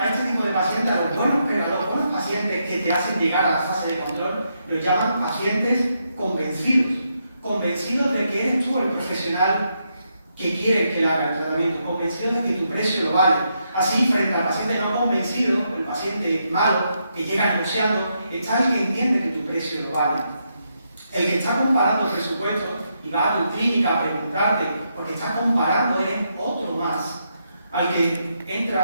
este tipo de pacientes, a los buenos pacientes que te hacen llegar a la fase de control, los llaman pacientes convencidos de que eres tú el profesional que quiere que le haga el tratamiento, convencidos de que tu precio lo vale. Así, frente al paciente no convencido, el paciente malo, que llega negociando, está el que entiende que tu precio lo vale. El que está comparando presupuestos y va a tu clínica a preguntarte, porque está comparando es otro más, al que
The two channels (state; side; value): inverted; both; correlation -0.80